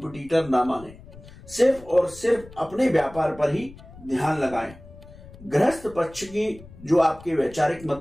ना माने। सिर्फ और सिर्फ अपने व्यापार पर ही ध्यान लगाएं। गृहस्थ पक्ष की जो आपके वैचारिक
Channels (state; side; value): noise; left; rumble, 19 dB below the sound